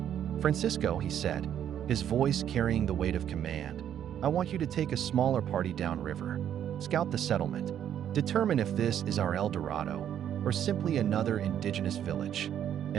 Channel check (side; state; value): left; quieter; 9.9 dB